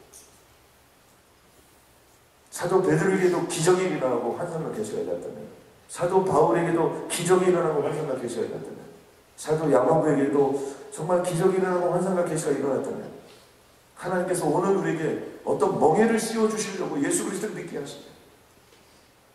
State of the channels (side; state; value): both; identical; correlation 1.00